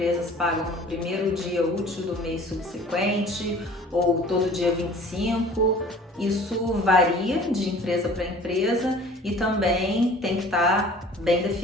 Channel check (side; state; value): both; normal; correlation 0.47